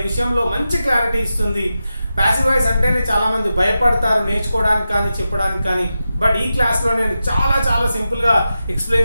విషయంలో మంచి క్లారిటీ ఇస్తుంది. ప్యాసివ్ వాయిస్ అంటేనే చాలామంది భయపడతారు నేర్చుకోవడానికి కానీ చెప్పడానికి కానీ. బట్ ఈ క్లాస్లో నేను చాలా సింపుల్గా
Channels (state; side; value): inverted; both; correlation -0.91